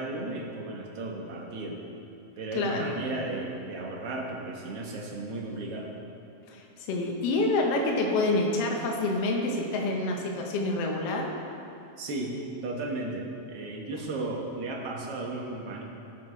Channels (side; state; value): right; late; 7.6 ms